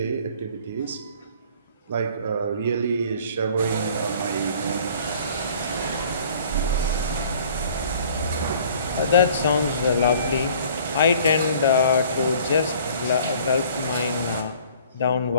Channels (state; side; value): inverted; both; correlation -0.52